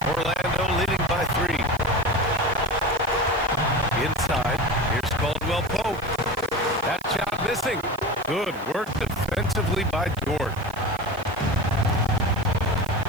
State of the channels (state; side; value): noise; right; hiss, 23 dB below the sound